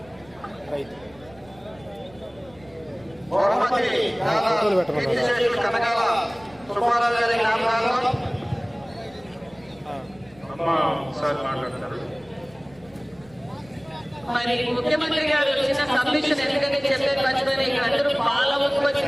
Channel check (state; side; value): noise; right; rumble, 26 dB below the sound